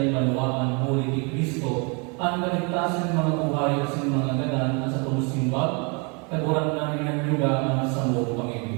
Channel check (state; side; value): quieter; left; 32.8 dB